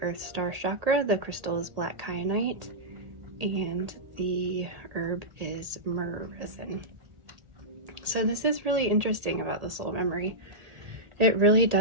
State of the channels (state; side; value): late; left; 1.8 ms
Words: Earth Star Chakra. The crystal is black kyanite, and the herb is myrrh resin. So this is really interesting about the soul memory. It really